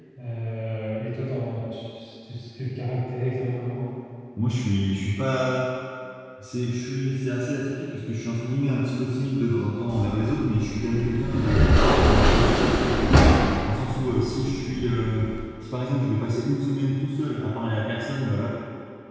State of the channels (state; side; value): identical; both; correlation 1.00